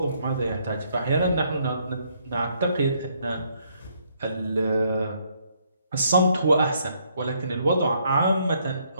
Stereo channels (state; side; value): inverted; both; correlation -0.71